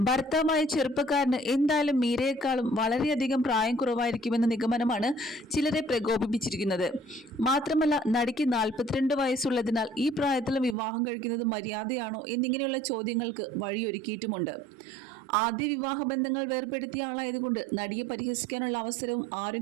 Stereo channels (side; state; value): left; drops out; at 10.8 s